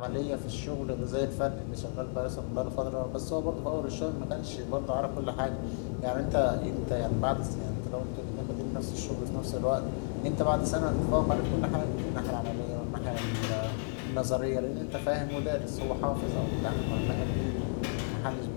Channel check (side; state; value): right; silent; 56 dB below the other